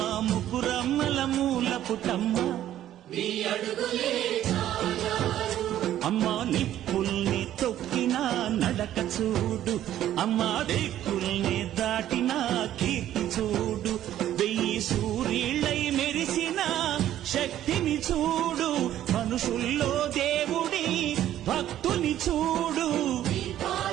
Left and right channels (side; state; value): left; quieter; 12.2 dB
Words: ముగ్గురమ్మల మూల పుటమ్మ అమ్మా నిప్పుల్ని తొక్కిన నడక చూడు, అమ్మా దిక్కుల్ని దాటిన కీర్తి చూడు, 1000 సూర్యుళ్ళై మెరిసిన శక్తిని చూడు, మనుషుల్లో దేవుడి భక్తుని చూడు.